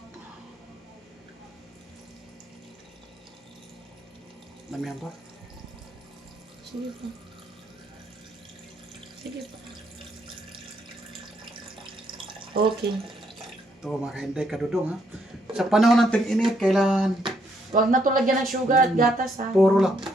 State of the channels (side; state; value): both; normal; correlation 0.73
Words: Damihan pa. Sige pa. Sige pa. Okay. Ito mga kainday ka doon ha. Sa panahon ng tag-init, kailangan Huwag na ito lagyan ng sugar at gatas, ha? puro lang.